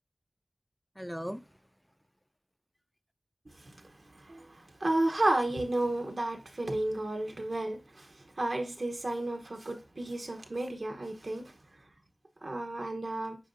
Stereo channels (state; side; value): normal; both; correlation 0.98